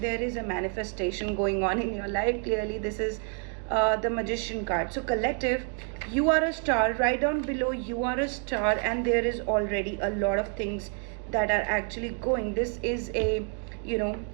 There is a manifestation going on in your life. Clearly this is the magician card. So collective, you are a star. Right down below, you are a star, and there is already a lot of things that are actually going. This is a,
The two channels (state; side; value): quieter; left; 38.8 dB